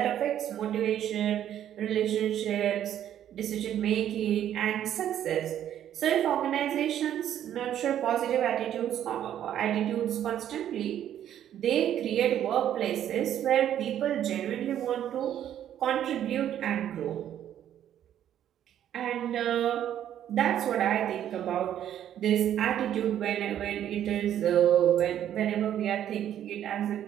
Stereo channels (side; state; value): left; quieter; 10.7 dB